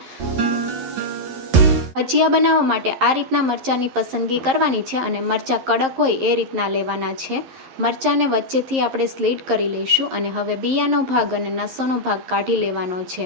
ભજીયા બનાવવા માટે આ રીતના મરચાંની પસંદગી કરવાની છે અને મરચાં કડક હોય એ રીતના લેવાના છે। મરચાંને વચ્ચેથી આપણે સ્લીટ કરી લઈશું અને હવે બિયાનો ભાગ અને નસોનો ભાગ કાઢી લેવાનો છે।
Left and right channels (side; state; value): left; late; 11 ms